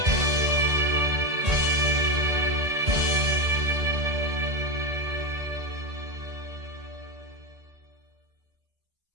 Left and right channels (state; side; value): late; left; 1.8 ms